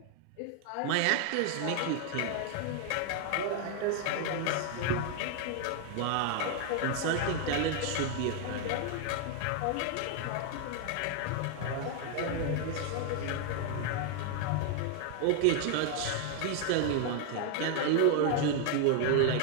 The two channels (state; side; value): different; both; correlation 0.00